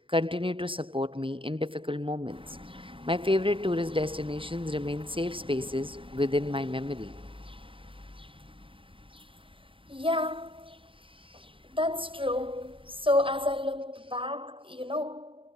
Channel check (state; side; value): late; left; 0.25 ms